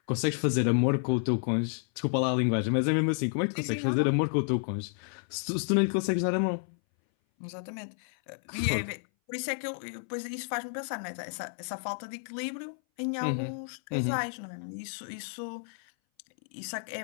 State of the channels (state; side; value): silent; right; 57 dB below the other